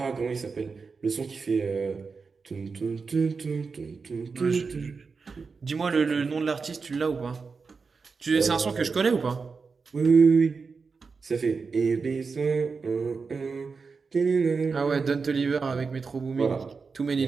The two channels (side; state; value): left; quieter; 4.9 dB